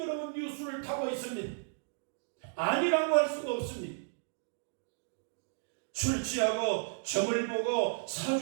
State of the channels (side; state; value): left; silent; digital silence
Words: 뉴스를 타고 있습니다. 아니라고 할 수가 없습니다. 술 취하고 점을 보고